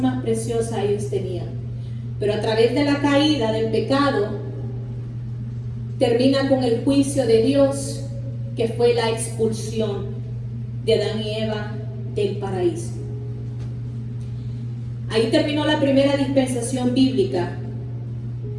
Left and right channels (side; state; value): both; identical; correlation 1.00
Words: preciosa ellos tenían. Pero a través de la caída, del pecado, termina con el juicio de Dios, que fue la expulsión de Adán y Eva del paraíso. Ahí terminó la primera dispensación bíblica